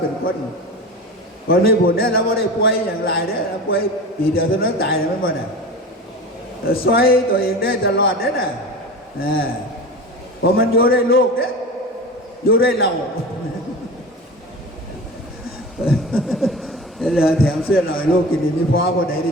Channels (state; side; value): normal; both; correlation 0.31